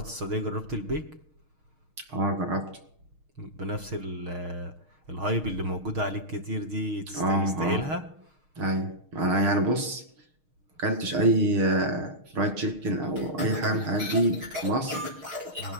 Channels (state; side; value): late; left; 6.5 ms